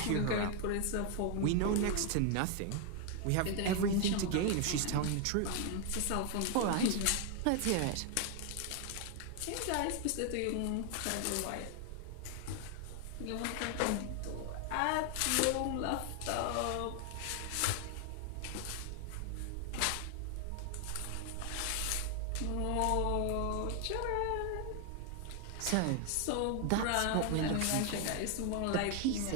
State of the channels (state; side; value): different; both; correlation 0.00